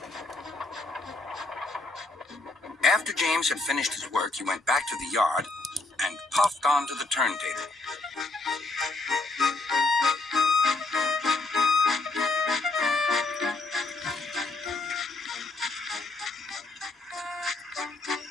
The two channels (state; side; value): quieter; right; 3.3 dB